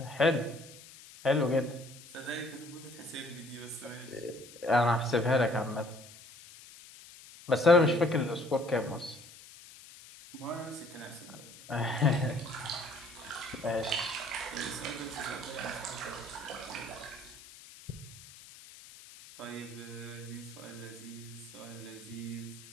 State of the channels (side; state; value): left; noise; hiss, 18 dB below the sound